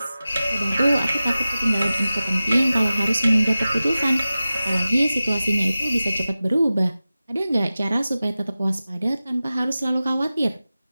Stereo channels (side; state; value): both; inverted; correlation -0.95